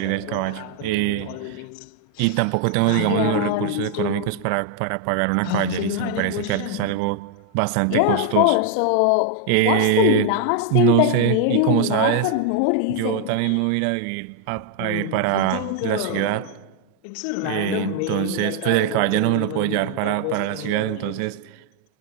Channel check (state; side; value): different; both; correlation 0.00